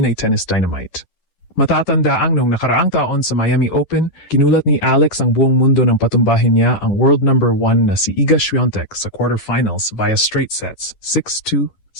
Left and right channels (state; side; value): late; right; 10 ms